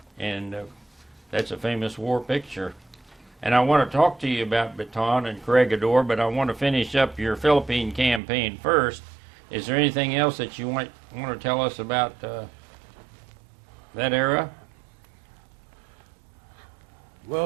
and that's a famous war picture. And I want to talk to you about Baton and Corregidor, but I want to finish up your Philippine campaign first. Is there anything else that you want to tell us about that era?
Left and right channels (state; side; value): drops out; left; at 8.2 s